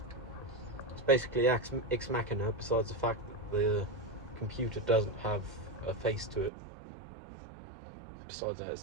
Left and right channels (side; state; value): left; drops out; at 6.5 s